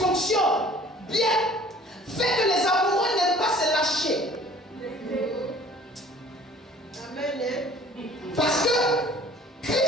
fonctionne bien fait que les amoureux n'aiment pas se lâcher. Parce que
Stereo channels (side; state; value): both; normal; correlation 0.51